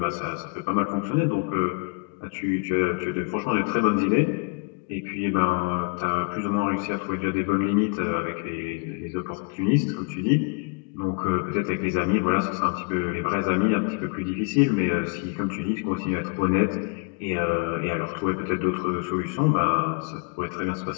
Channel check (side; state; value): right; quieter; 33.5 dB